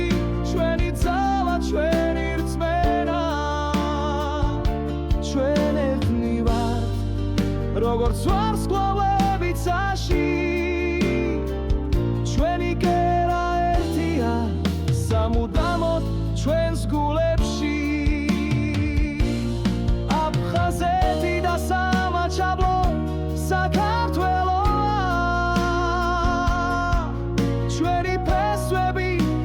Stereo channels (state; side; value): identical; both; correlation 1.00